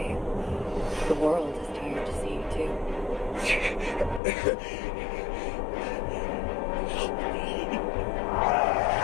The world is tired to see you too.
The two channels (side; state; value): right; drops out; at 4.2 s